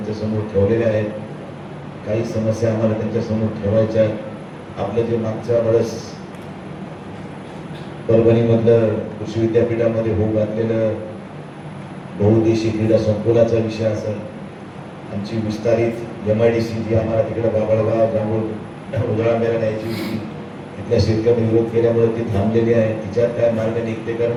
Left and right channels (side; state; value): both; identical; correlation 1.00